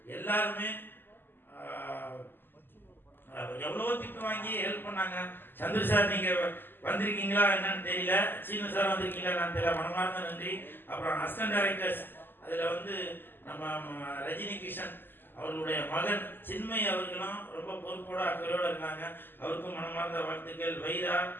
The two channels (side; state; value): right; late; 0.095 ms